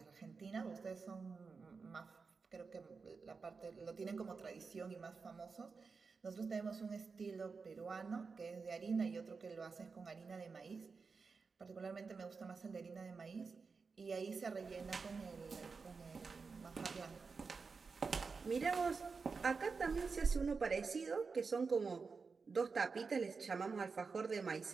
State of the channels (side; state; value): left; quieter; 4.8 dB